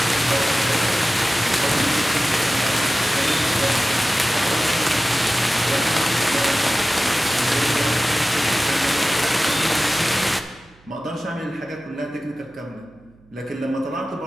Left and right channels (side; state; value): right; noise; hum, 30 dB below the sound